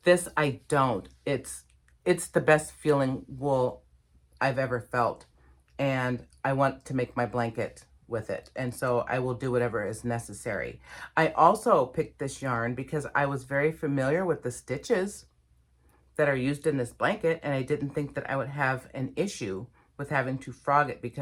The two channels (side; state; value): both; identical; correlation 1.00